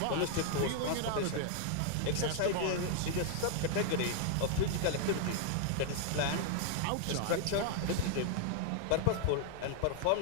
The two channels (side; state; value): both; different; correlation 0.00